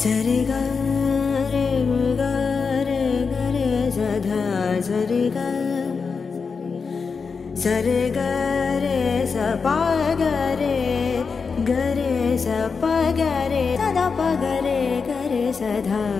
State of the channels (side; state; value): right; quieter; 5.2 dB